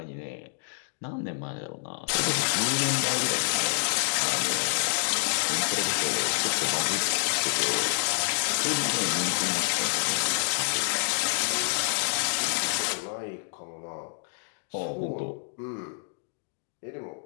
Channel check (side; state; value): right; silent; digital silence